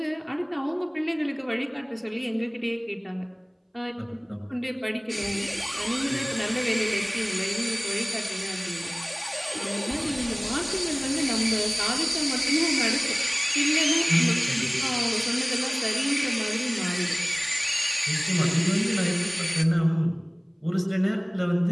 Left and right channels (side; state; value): both; identical; correlation 1.00